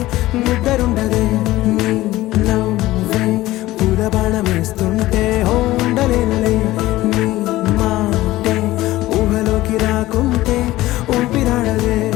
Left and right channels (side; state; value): right; quieter; 16.9 dB